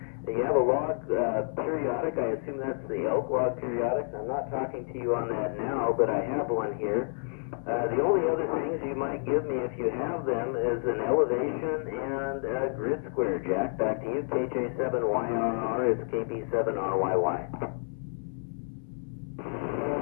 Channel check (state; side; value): silent; right; 58 dB below the other